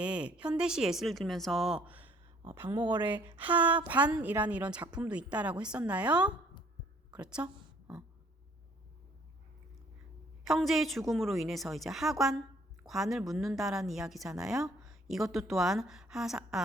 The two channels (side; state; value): both; normal; correlation 0.60